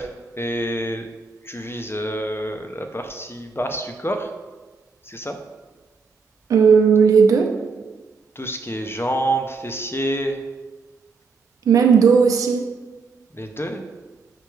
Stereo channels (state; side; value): quieter; left; 4.9 dB